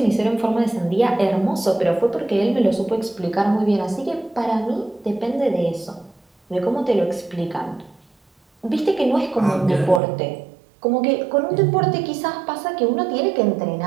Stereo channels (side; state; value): left; drops out; at 10.0 s